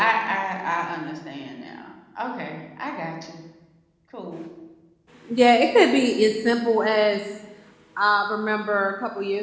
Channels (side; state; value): both; identical; correlation 1.00